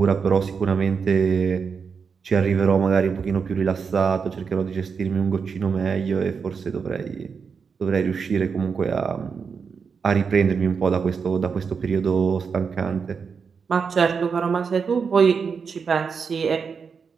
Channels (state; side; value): quieter; left; 5.8 dB